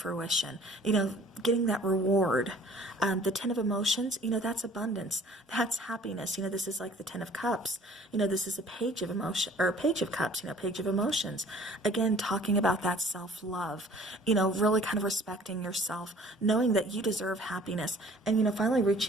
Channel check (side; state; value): both; normal; correlation 0.52